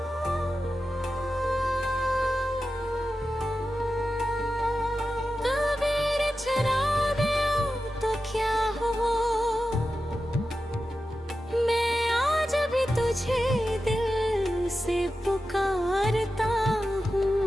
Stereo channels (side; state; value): both; normal; correlation 0.92